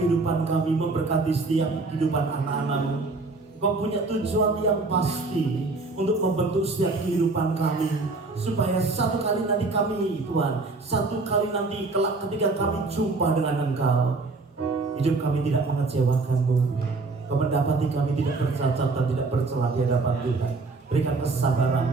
kami, memberkati setiap kehidupan anak-anak-Mu. Kau punya tujuan yang pasti untuk membentuk setiap kehidupan kami, supaya satu kali nanti kami, Tuhan, satu kali nanti kelak ketika kami jumpa dengan Engkau, hidup kami tidak mengecewakan-Mu. Kau mendapati kami tidak bercacat dan tidak bercela di hadapan Tuhan. Berikan kesabaran,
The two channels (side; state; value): left; quieter; 3.6 dB